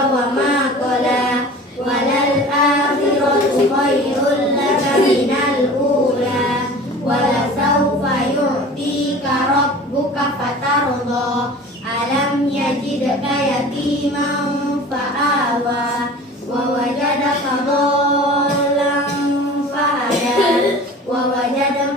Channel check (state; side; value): normal; both; correlation 0.41